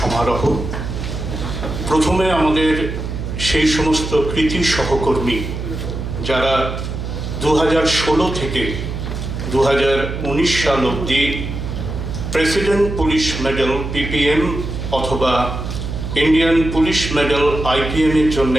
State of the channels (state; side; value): noise; right; hum, 5 dB below the sound